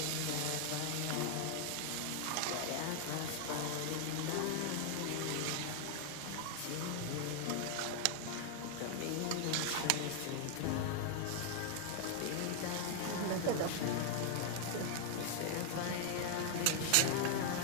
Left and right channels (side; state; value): both; different; correlation 0.00